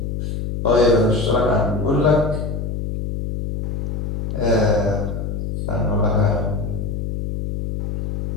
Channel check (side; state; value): left; noise; hum, 3 dB below the sound